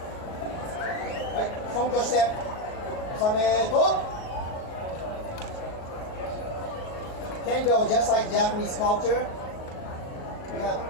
Right, front step. Sameto. Kendo, just like Japanese culture, we have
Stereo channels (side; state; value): right; late; 38 ms